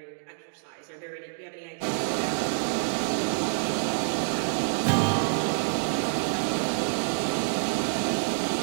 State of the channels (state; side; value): silent; left; digital silence